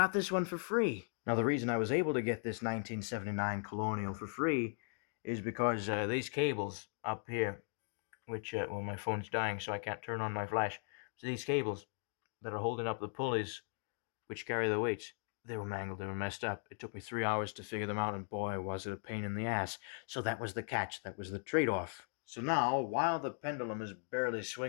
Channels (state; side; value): silent; right; 52 dB below the other